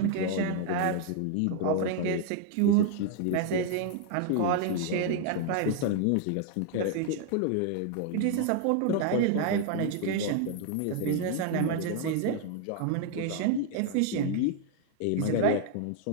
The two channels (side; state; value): both; different; correlation 0.00